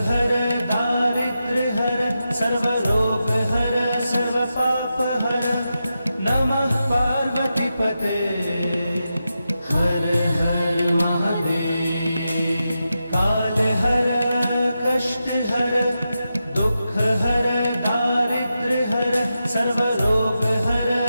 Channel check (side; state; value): both; inverted; correlation -0.89